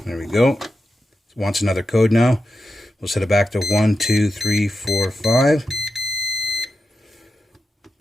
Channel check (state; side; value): normal; both; correlation 0.89